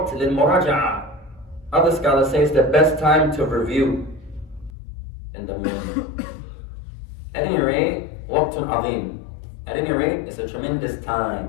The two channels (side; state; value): right; drops out; at 4.7 s